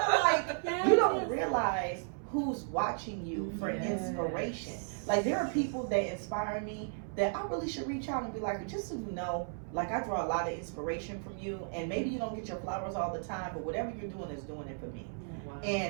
of like, you don't realize who's watching you for inspiration. Like, there are people that inspire me that I really should reach out and be like, just so you know, like, I draw a lot of inspiration from you, and maybe you don't get your flowers all the time, but whatever you're doing is doing it for me.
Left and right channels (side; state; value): left; silent; 55 dB below the other